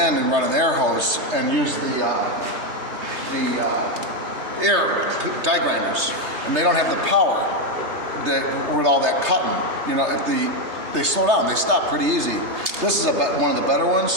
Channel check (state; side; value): late; left; 3.3 ms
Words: and run an air hose and use the air die grinders, and they don't have the power that with all that cutting. You know, if they slow down, they stop pretty easy. This is one of the better ones,